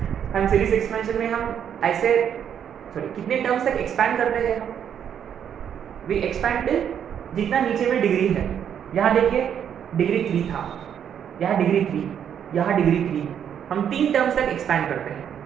हम सीरीज एक्सपेंशन में हम ऐसे कितने टर्म्स तक एक्सपैंड करते हैं, हम वी एक्सपैंड जितना नीचे में डिग्री है। यहाँ देखिए डिग्री 3 था, यहाँ डिग्री 3, यहाँ डिग्री 3, हम 3 टर्म्स तक एक्सपैंड करते हैं।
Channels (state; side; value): quieter; left; 8.8 dB